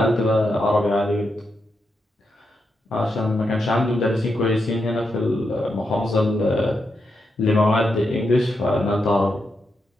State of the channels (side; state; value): both; normal; correlation 0.84